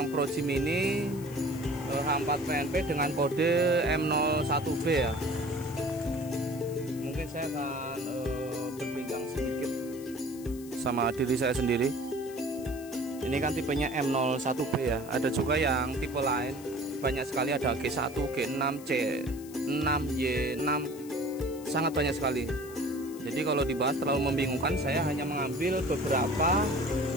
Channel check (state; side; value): noise; left; hiss, 19 dB below the sound